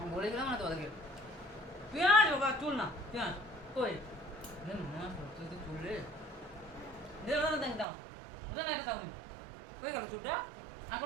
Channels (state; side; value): drops out; left; at 7.9 s